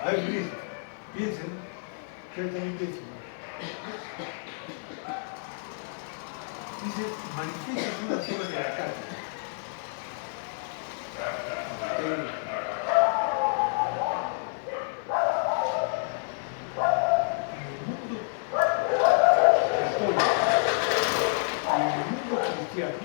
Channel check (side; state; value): right; silent; 59 dB below the other